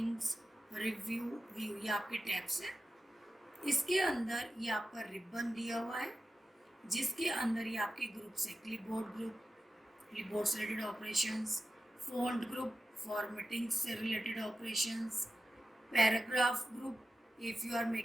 review, view, ये आपके टैब्स हैं. इसके अंदर ये आपका रिबन दिया हुआ है, जिसके अंदर ये आपके ग्रुप से क्लिपबोर्ड से related operations, font group, formatting से related operations, paragraph group, if you are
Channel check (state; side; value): normal; both; correlation 0.92